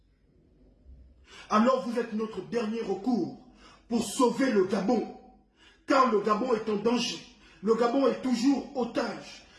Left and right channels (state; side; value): identical; both; correlation 1.00